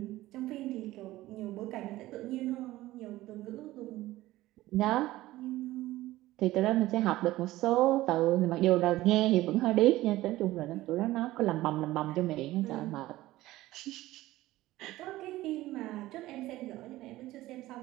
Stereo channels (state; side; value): quieter; left; 16.7 dB